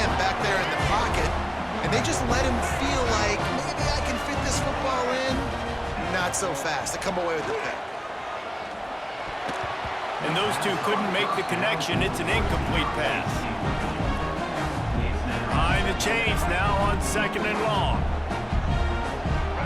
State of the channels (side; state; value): both; identical; correlation 1.00